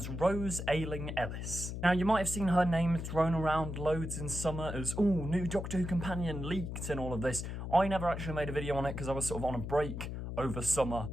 Rose Ayling Ellis. Now, you might have seen her name thrown around loads in summer as, ooh, new Doctor Who companion leaked and all of this. I never actually made a video on it because I was sort of on a break over summer.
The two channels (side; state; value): left; noise; hum, 6 dB below the sound